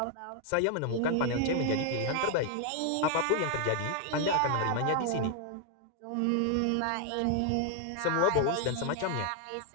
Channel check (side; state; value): both; different; correlation 0.00